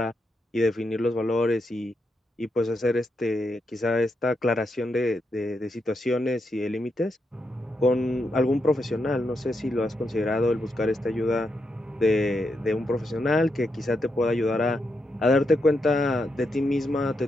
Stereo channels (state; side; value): normal; both; correlation 0.83